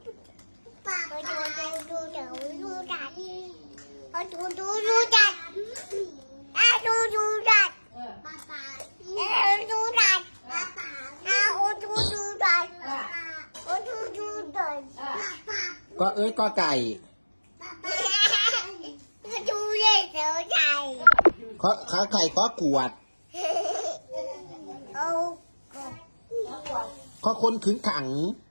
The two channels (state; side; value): inverted; both; correlation -1.00